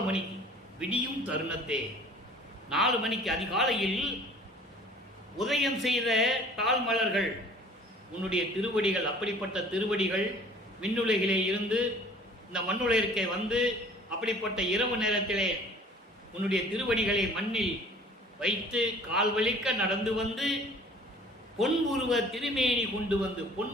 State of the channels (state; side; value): normal; both; correlation 0.50